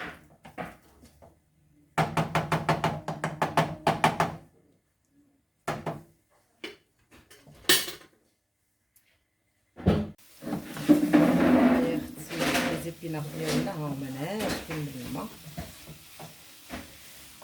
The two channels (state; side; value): identical; both; correlation 1.00